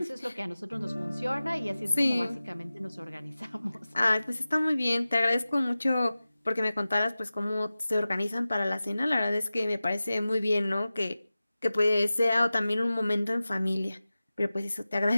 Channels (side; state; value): both; inverted; correlation -0.96